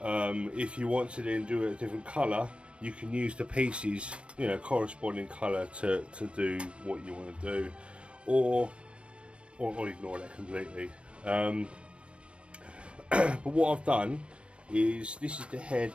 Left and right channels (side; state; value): left; late; 0.059 ms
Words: you want to then do a different colour, you can use the pieces, you know, corresponding colour to do what you want to do, or ignore that completely. But what I've done is, this is the head